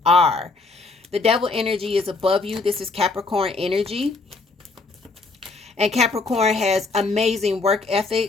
are. The devil energy is above you. This is Capricorn energy, and Capricorn has amazing work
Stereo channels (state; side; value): quieter; right; 3.8 dB